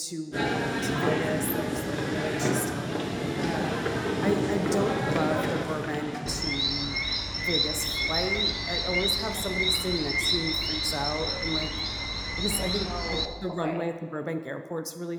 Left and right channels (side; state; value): both; identical; correlation 1.00